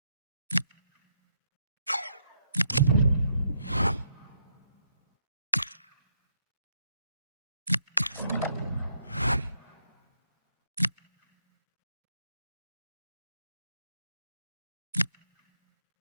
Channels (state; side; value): inverted; both; correlation -0.76